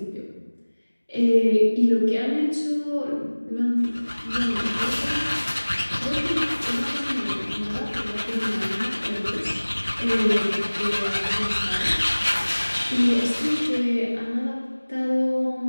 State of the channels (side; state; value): both; inverted; correlation -1.00